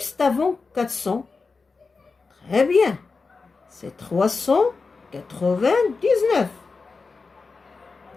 avant 400? Très bien. C'est 399.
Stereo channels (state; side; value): quieter; right; 4.3 dB